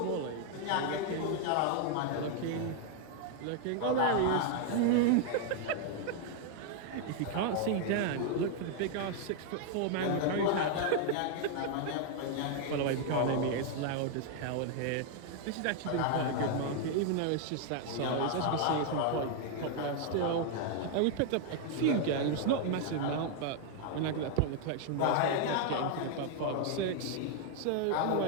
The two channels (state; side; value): different; both; correlation 0.00